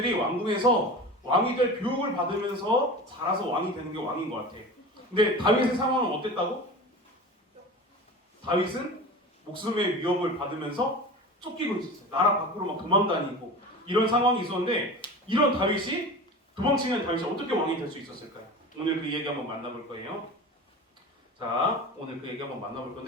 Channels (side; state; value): both; normal; correlation 0.33